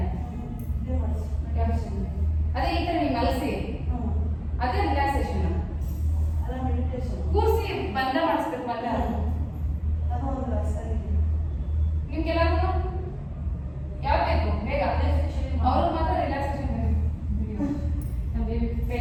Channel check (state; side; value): identical; both; correlation 1.00